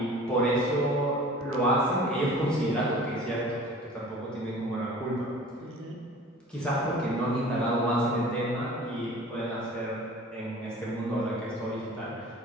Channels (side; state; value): both; normal; correlation 0.44